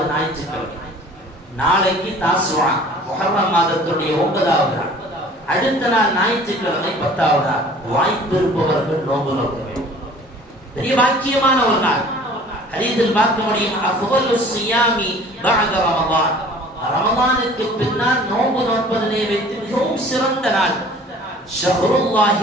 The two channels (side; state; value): both; normal; correlation 0.48